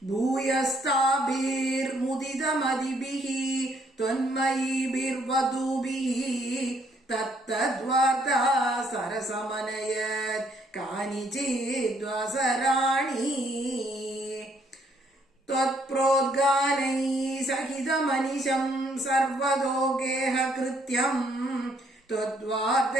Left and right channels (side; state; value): both; normal; correlation 0.69